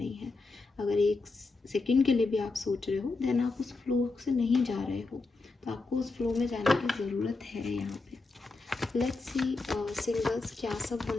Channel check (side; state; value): right; quieter; 3.6 dB